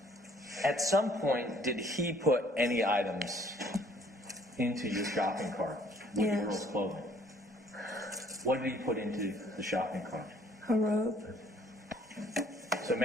At some point, did he put any items into your shopping cart with Yes. your girls' clothing? What did he put into the shopping cart? A rope. So,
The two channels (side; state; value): both; normal; correlation 0.60